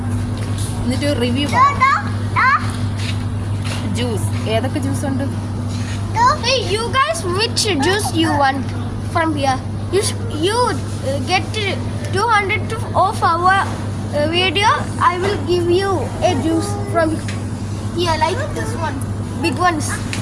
എന്നിട്ട് റിവ്യൂ ജ്യൂസ്. ഏതൊക്കെ ജ്യൂസ് ഉണ്ട്? Hey, you guys, which juice you want from here? You get 200 of our video. I will give you a juice from here, like this one, big ones.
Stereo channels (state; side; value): identical; both; correlation 1.00